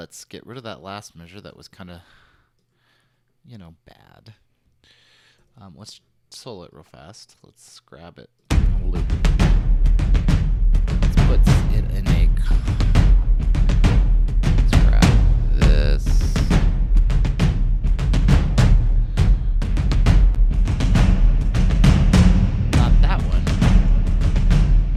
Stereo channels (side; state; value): both; identical; correlation 1.00